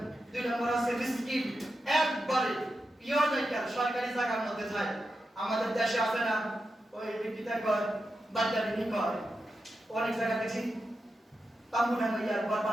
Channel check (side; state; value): both; normal; correlation 0.89